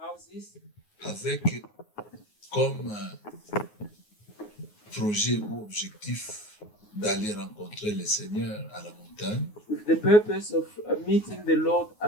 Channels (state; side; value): late; right; 9.5 ms